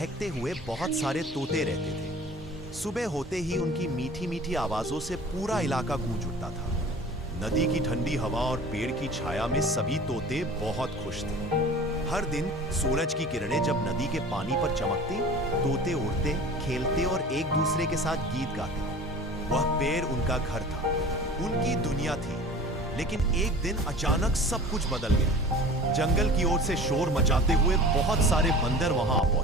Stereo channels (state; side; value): normal; both; correlation 0.41